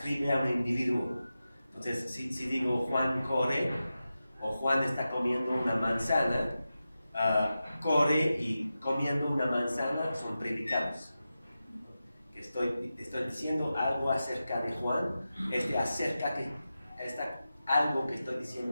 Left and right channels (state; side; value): inverted; both; correlation -0.92